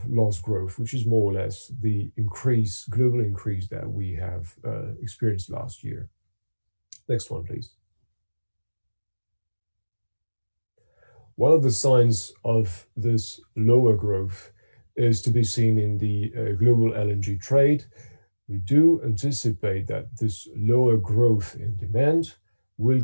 lost growth, which is more or less the global increase that we have experienced last year. Next one, please. One of the signs of this lower growth is to be seen in the global LNG trade. We do anticipate that this lower growth in demand will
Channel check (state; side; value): inverted; both; correlation -1.00